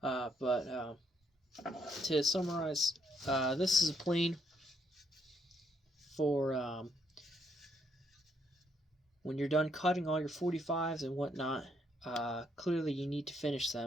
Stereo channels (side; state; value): both; normal; correlation 0.72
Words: to summarize, this is a plane for when you're done cutting all your 45s and whatnot. Clearly you need to finish